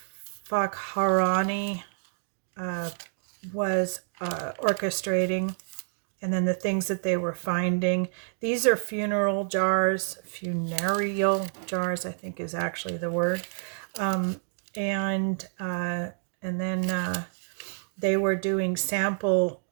Fakharani was orchestrating, and then the things that they were finding. These are funereal jars, I think is actually the word. And then they were doing sample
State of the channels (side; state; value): left; silent; digital silence